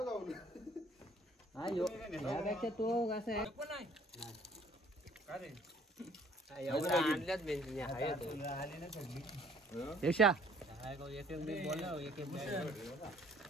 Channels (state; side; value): normal; both; correlation 0.58